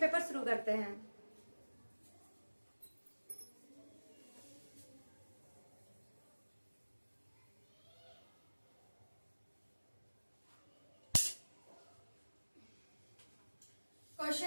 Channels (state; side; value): inverted; both; correlation -1.00